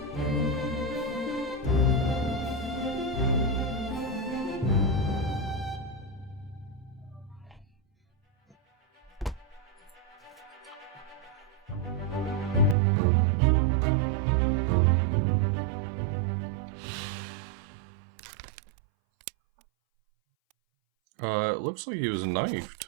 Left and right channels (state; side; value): drops out; left; at 12.8 s